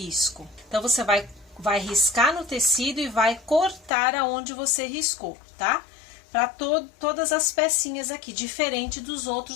Então, você vai riscar no tecido e vai cortar aonde você riscou, tá? Para todas as pecinhas aqui, diferente dos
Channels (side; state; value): right; drops out; at 3.9 s